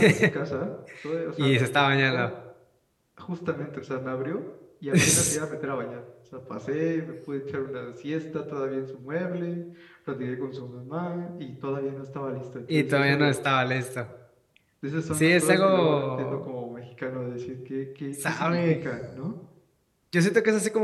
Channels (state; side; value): identical; both; correlation 1.00